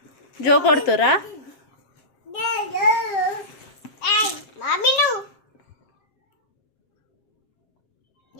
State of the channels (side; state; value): right; late; 7.5 ms